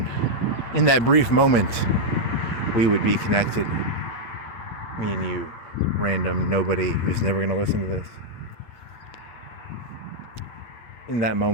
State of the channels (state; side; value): late; right; 8.4 ms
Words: in that brief moment, we would be connected. Me and you, random nobody who's never going to listen to this. In that